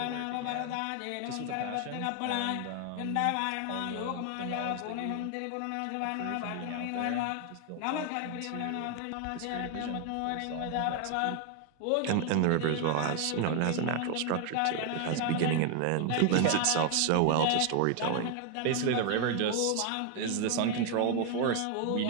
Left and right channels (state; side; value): different; both; correlation 0.00